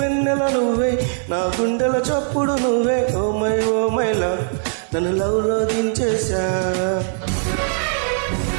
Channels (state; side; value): silent; left; digital silence